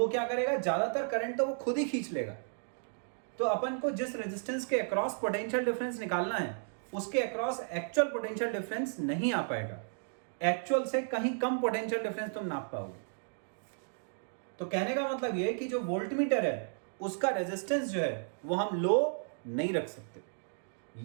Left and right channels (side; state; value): left; silent; digital silence